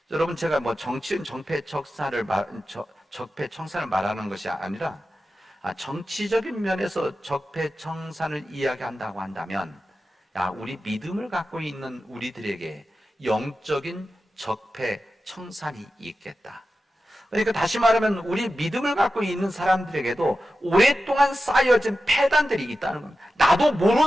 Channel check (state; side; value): normal; both; correlation 0.93